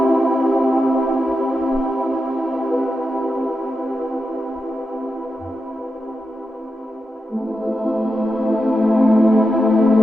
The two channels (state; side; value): normal; both; correlation 0.89